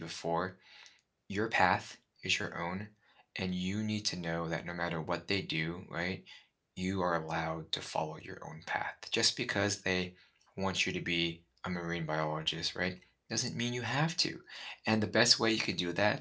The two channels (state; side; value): identical; both; correlation 1.00